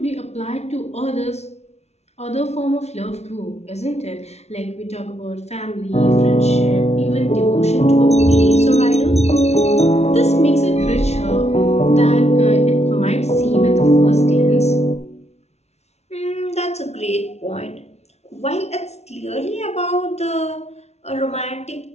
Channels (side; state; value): right; late; 0.31 ms